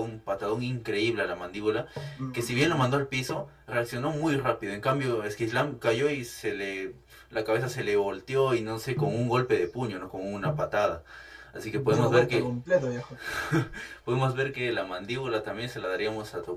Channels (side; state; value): both; identical; correlation 1.00